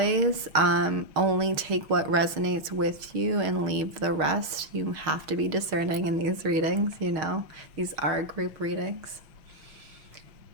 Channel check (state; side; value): late; left; 6.4 ms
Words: only take what resonates with you and leave the rest. You have to be discerning in these readings, you know. These are group readings.